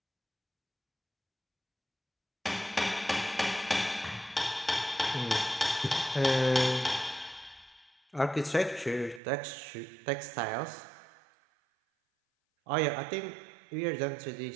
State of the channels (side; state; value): left; drops out; at 9.2 s